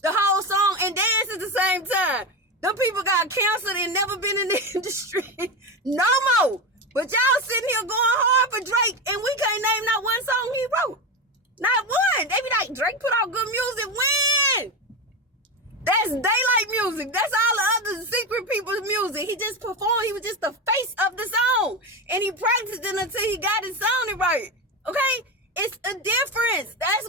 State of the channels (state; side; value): normal; both; correlation 0.17